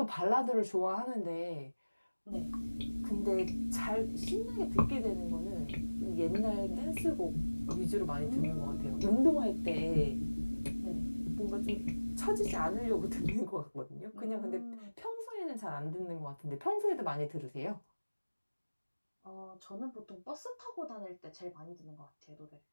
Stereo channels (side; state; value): both; inverted; correlation -1.00